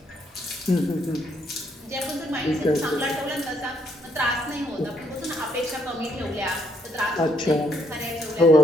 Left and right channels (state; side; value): normal; both; correlation 0.72